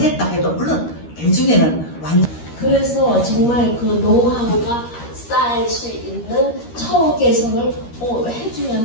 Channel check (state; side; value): late; right; 13 ms